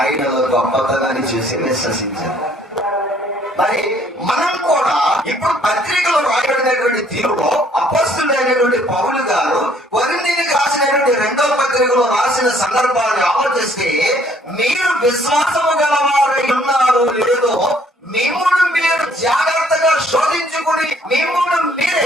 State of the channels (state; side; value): normal; both; correlation 0.62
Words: గొప్పతనాన్ని చూసి విశ్వసించారు. మరి మనం కూడా ఇప్పుడు పత్రికలో రాయబడినటువంటి తీరులో అపొస్తలుడైనటువంటి పౌలు గారు కొరింథీయులకు రాసినటువంటి 2వ పత్రికలో రాసిన సందర్భాన్ని ఆలోచిస్తే, మీరు విశ్వాసము గలవారై ఉన్నారో లేదో మిమ్మును మీరు జాగ్రత్తగా శోధించుకుని మిమ్మును